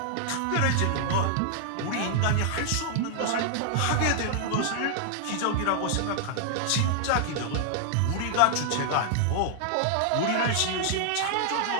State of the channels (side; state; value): both; different; correlation -0.01